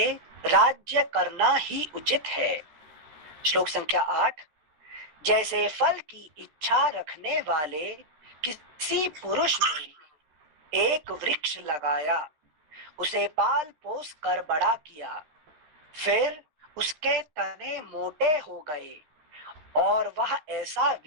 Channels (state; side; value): late; left; 13 ms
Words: राज्य करना ही उचित है। श्लोक संख्या 8, जैसे फल की इच्छा रखने वाले किसी पुरुष ने एक वृक्ष लगाया, उसे पाल पोस कर बड़ा किया, फिर उसके तने मोटे हो गए और वह ऐसा